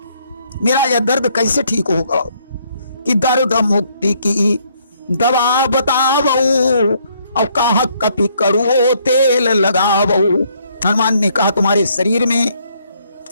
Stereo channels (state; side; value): inverted; both; correlation -0.68